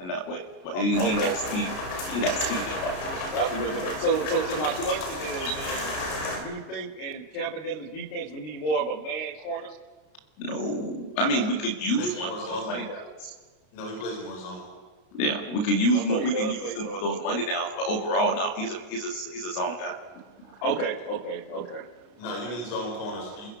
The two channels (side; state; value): right; late; 33 ms